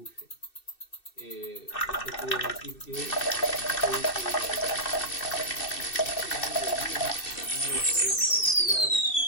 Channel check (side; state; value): right; late; 2.6 ms